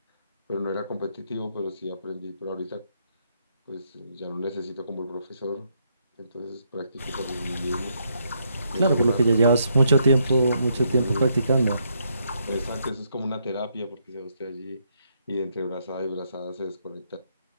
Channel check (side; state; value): both; inverted; correlation -0.75